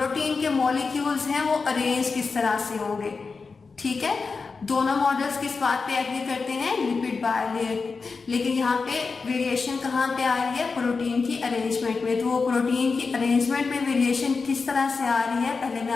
के मॉलिक्यूल्स हैं वो अरेंज किस तरह से होंगे। ठीक है, दोनों मॉडल्स किस बात पे एग्री करते हैं? Lipid bilayer. लेकिन यहाँ पे वेरिएशन कहाँ पे आ रही है? प्रोटीन की अरेंजमेंट में। तो वो प्रोटीन की अरेंजमेंट में वेरिएशन किस तरह से आ रही है पहले मैं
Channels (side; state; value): right; quieter; 4.6 dB